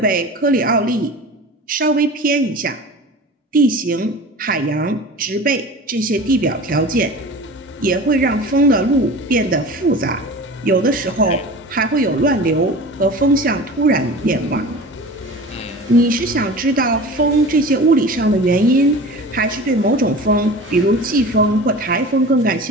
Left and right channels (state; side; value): normal; both; correlation 0.36